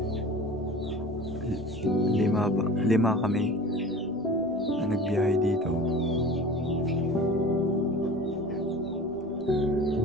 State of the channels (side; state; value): right; noise; rumble, 24 dB below the sound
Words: lima kami na nagbiyahe dito.